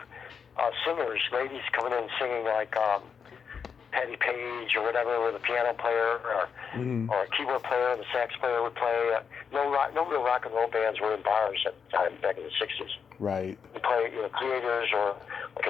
singers, ladies coming in singing like Patty Page or whatever, with a piano player or a keyboard player, and the sax player would play. No real rock and roll bands were in bars at the time, back in the 60s. Right. You play, Creators, or like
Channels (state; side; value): quieter; right; 6.5 dB